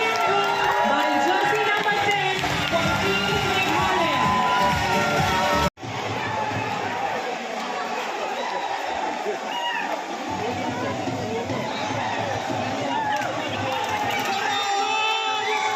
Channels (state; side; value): identical; both; correlation 1.00